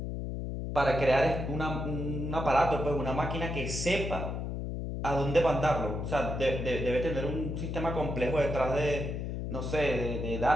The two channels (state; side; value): noise; left; hum, 4 dB below the sound